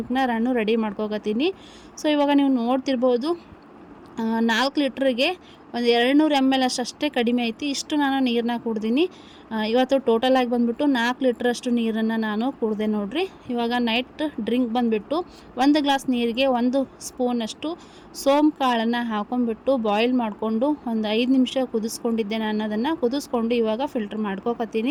ನಾನು ರೆಡಿ ಮಾಡ್ಕೋಕತ್ತೀನಿ. ಸೊ ಇವಾಗ ನೀವು ನೋಡ್ತಿರ್ಬೋದು 4 ಲೀಟ್ರಿಗೆ ಒಂದು 200 ml ಅಷ್ಟೇ ಕಡಿಮೆ ಐತಿ. ಇಷ್ಟು ನಾನು ನೀರನ್ನ ಕುಡ್ದೀನಿ. ಇವತ್ತು ಟೋಟಲಾಗಿ ಬಂದುಬಿಟ್ಟು 4 ಲೀಟ್ರಷ್ಟು ನೀರನ್ನು ನಾನು ಕುಡಿದೆ ನೋಡಿರಿ. ಇವಾಗ ನೈಟ್ ಡ್ರಿಂಕ್ ಬಂದುಬಿಟ್ಟು 1 ಗ್ಲಾಸ್ ನೀರಿಗೆ 1 ಸ್ಪೂನಷ್ಟು ಸೋಂಪು ಕಾಳನ್ನು ಹಾಕೊಂಡ್ಬಿಟ್ಟು ಬಾಯ್ಲ್ ಮಾಡಿಕೊಂಡು ಒಂದು 5 ನಿಮಿಷ ಕುದಿಸ್ಕೊಂಡಿದ್ದೆ. ನಾನು ಅದನ್ನು ಕುದಿಸ್ಕೊಂಡು ಇವಾಗ ಫಿಲ್ಟ್ರ್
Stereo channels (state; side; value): identical; both; correlation 1.00